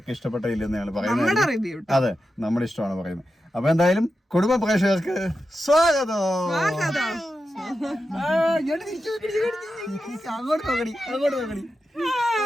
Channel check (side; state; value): both; normal; correlation 0.90